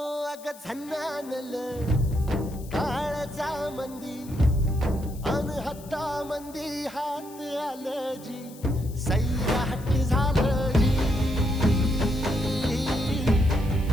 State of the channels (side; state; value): left; noise; hiss, 20 dB below the sound